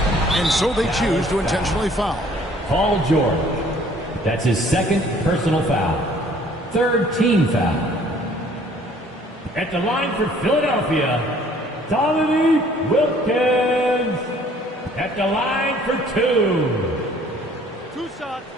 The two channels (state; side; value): normal; both; correlation 0.57